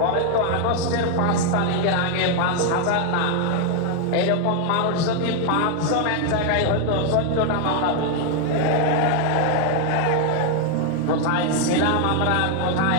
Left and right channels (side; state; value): both; different; correlation 0.00